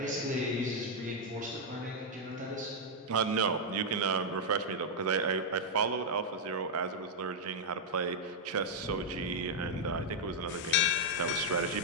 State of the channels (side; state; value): both; normal; correlation -0.02